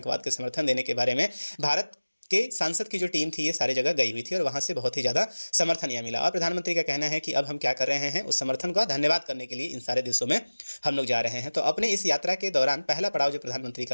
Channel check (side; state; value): both; inverted; correlation -1.00